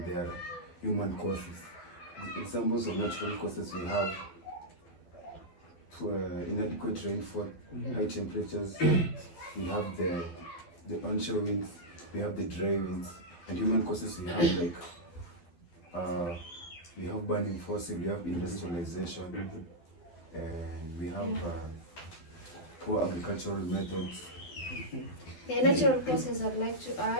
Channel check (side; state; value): right; late; 12 ms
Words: there are human causes. Examples of natural causes we have inadequate rainfall, high temperatures, we have the onshore winds, we have the dry winds, and human causes we have like we have burning fossil, we have industrialization, and we have poor agricultural methods. The natural causes I'd like to